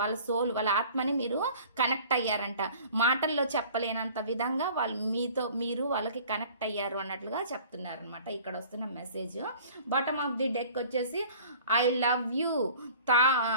సోల్, వాళ్ళ ఆత్మని మీరు కనెక్ట్ అయ్యారంట. మాటల్లో చెప్పలేనంత విధంగా మీరు వాళ్ళకి కనెక్ట్ అయ్యారు అన్నట్లుగా చెప్తున్నారు అనమాట. ఇక్కడ వస్తున్న message. Bottom of the deck వచ్చేసి I love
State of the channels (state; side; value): inverted; both; correlation -0.47